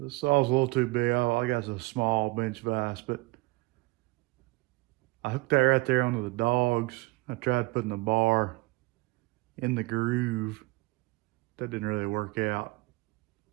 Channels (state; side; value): quieter; left; 23.7 dB